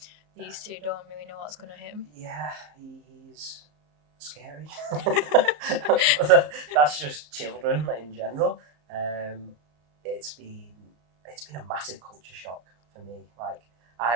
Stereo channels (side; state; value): left; late; 34 ms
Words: these two don't really know what's going to hit him. Yeah, he's scary. That's just children in general. It's been a massive culture shock for me. Like,